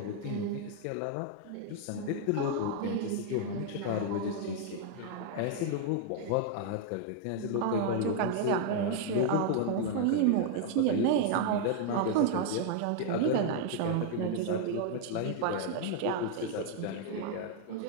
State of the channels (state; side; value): different; both; correlation 0.00